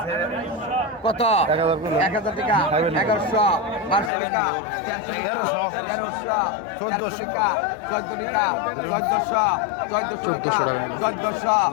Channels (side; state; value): right; drops out; at 4.1 s